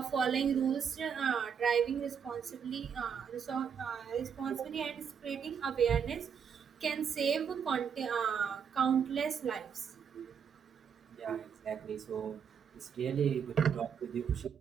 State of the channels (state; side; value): quieter; left; 7.3 dB